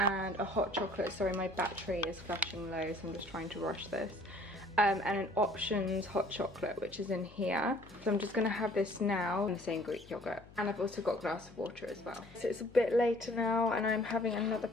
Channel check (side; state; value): left; noise; hum, 22 dB below the sound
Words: a hot chocolate. Sorry, my battery is flashing low, so I'm just trying to rush this. And an options hot chocolate, which is in here. So I'm just gonna have this now in the same Greek yogurt. And I've also got a glass of water as well. So it's a bit later now and I'm having another